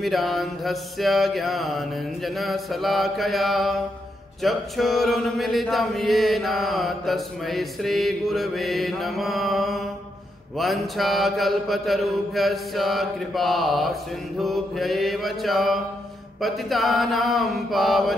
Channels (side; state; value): both; normal; correlation 0.81